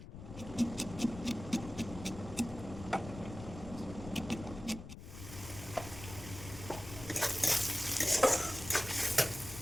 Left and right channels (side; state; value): left; noise; rumble, 12 dB below the sound